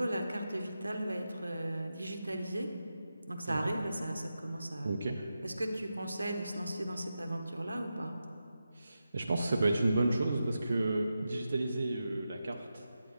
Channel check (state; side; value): inverted; both; correlation -0.90